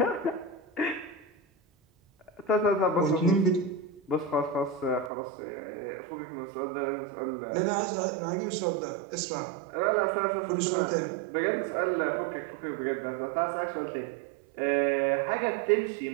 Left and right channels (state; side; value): drops out; left; at 5.1 s